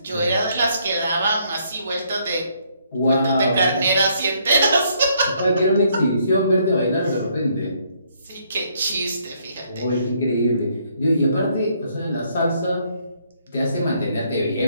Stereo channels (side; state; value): both; inverted; correlation -0.69